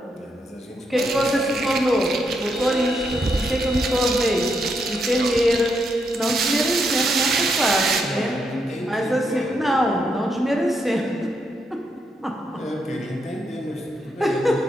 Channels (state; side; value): normal; both; correlation 0.79